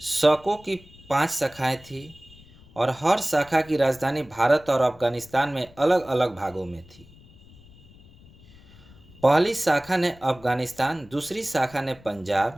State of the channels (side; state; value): left; noise; rumble, 24 dB below the sound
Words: शकों की 5 शाखाएं थी और हर शाखा की राजधानी भारत और अफगानिस्तान में अलग अलग भागों में थी। पहली शाखा ने अफगानिस्तान, दूसरी शाखा ने